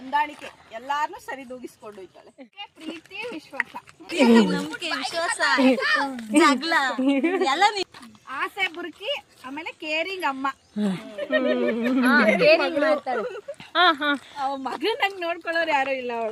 ಎಲ್ಲಾರನ್ನೂ ಸರಿದೂಗಿಸ್ಕೊಂಡು ಹೋಯ್ತಾಳೆ. ಪ್ರೀತಿ, ವಿಶ್ವಾಸ, ನಂಬಿಕೆ, ವಿಶ್ವಾಸ, ಜಗಳ ಎಲ್ಲ. ಆಸೆ ಬುರ್ಕಿ, ಆಮೇಲೆ ಕೇರಿಂಗ್ ಅಮ್ಮ. ಕೇರಿಂಗ್ ಮಾಡ್ತಾಳೆ. ಅವ ಮಗನಾಗ ನೋಡ್ಕೊಳ್ಳೋರು ಯಾರು ಇಲ್ಲ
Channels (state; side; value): identical; both; correlation 1.00